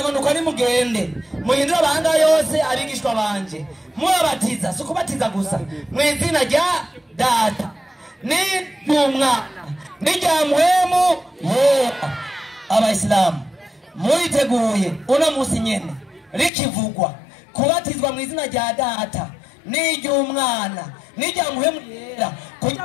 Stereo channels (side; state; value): right; drops out; at 16.5 s